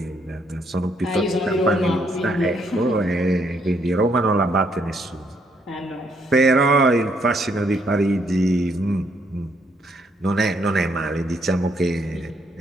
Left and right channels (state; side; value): normal; both; correlation 0.72